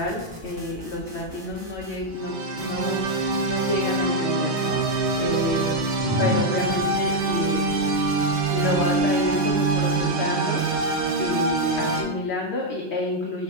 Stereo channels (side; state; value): both; normal; correlation 0.02